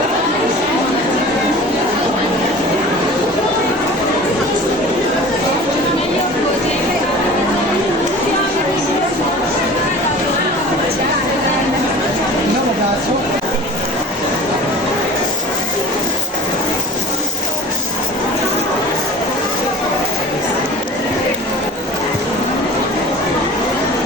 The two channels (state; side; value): normal; both; correlation 0.42